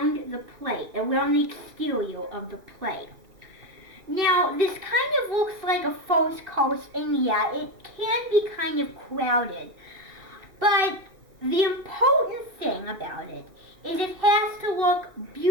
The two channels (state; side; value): late; left; 2.6 ms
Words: the plate, around the exterior of the plate. Now, this kind of looks like a false coast, and yeah, it can be kind of crowded. But the important thing about it is it has to look